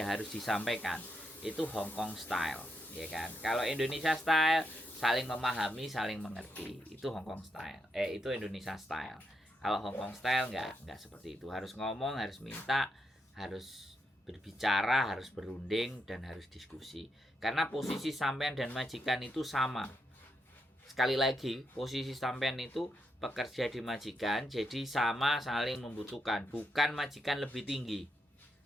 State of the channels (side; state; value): both; normal; correlation 0.82